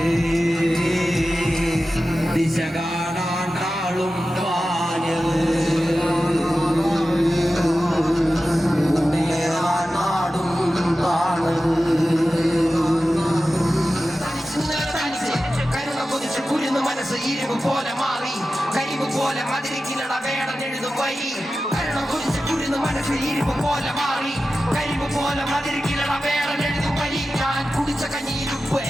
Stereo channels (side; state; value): both; normal; correlation 0.94